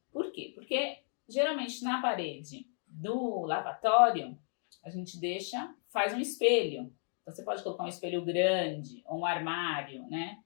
Por quê? Porque geralmente na parede do lavatório, a gente faz um espelho. Então você pode colocar um espelho grande ou um armário, né?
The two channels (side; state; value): right; silent; 55 dB below the other